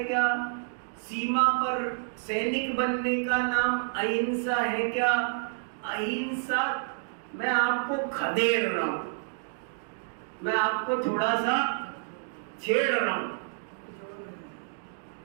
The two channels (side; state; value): left; silent; digital silence